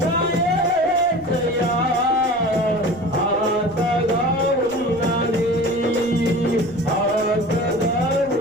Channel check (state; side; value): noise; right; rumble, 23 dB below the sound